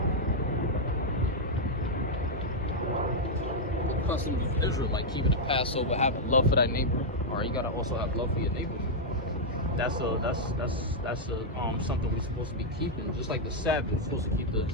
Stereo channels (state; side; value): normal; both; correlation -0.03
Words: Customs of Israel, like keeping the Passover, having love for thy neighbor. All right, you gotta also have love for your neighbor. That's something we're supposed to be keeping. Just like the Sabbath, we're supposed to keep the